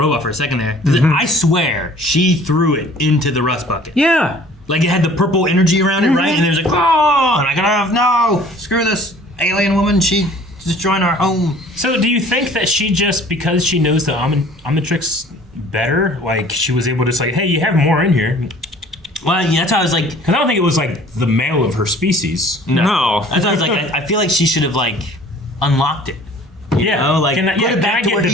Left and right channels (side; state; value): both; normal; correlation 0.51